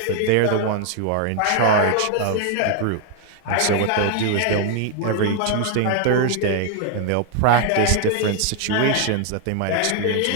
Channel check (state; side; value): different; both; correlation 0.00